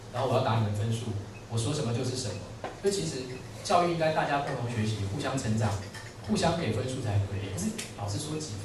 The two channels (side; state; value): both; identical; correlation 1.00